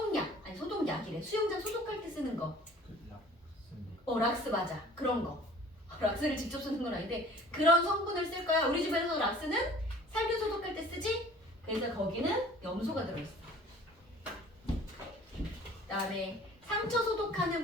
아니 소독약이래. 수영장 소독할 때 쓰는 거. 락스 맞아. 그런 거. 락스를 직접 쓰는 건 아닌데 그런 성분을 쓸 거야. 우리 집에서 락스는 살균 소독할 때 쓰지? 그래서 거기는 염소가 들어있어. 그다음에 상처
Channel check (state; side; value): normal; both; correlation 0.49